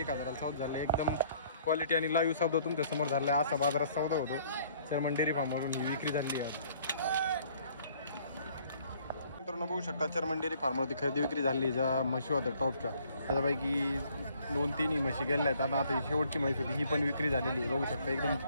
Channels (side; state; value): both; inverted; correlation -0.61